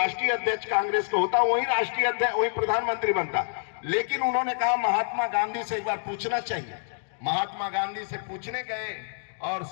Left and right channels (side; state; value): right; silent; digital silence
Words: अध्यक्ष कांग्रेस का होता वही राष्ट्रीय अध्यक्ष, वही प्रधानमंत्री बनता। लेकिन उन्होंने कहा महात्मा गांधी से एक बार पूछना चाहिए। महात्मा गांधी से पूछने गए और